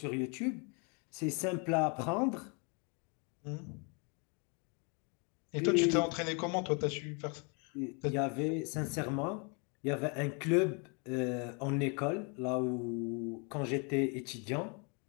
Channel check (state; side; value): quieter; right; 34.7 dB